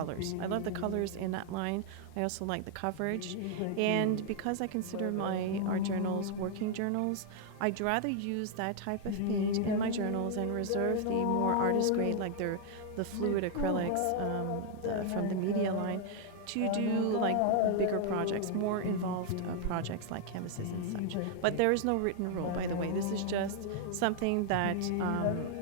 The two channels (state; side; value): different; both; correlation 0.00